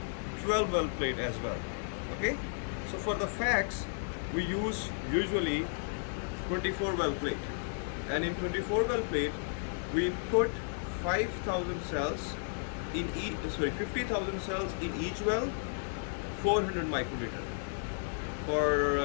12 well plate as well. Okay. So for the facts, we use usually 24 well plate, and in 24 well plate, we put 5,000 cells in 50,000 cells in each well, 400 microliter.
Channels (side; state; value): right; silent; digital silence